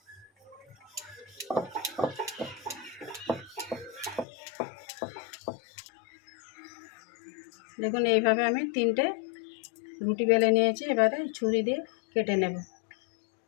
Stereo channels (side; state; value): right; drops out; at 4.2 s